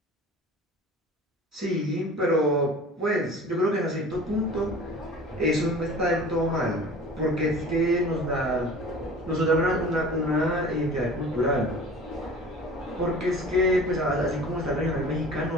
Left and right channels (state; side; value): normal; both; correlation 0.42